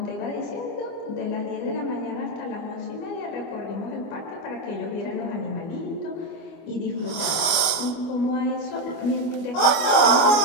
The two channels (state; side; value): late; right; 24 ms